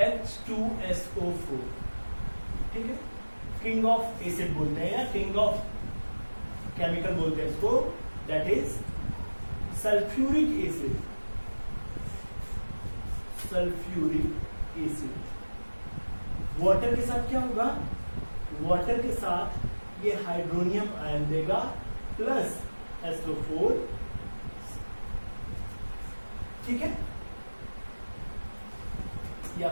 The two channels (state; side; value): inverted; both; correlation -1.00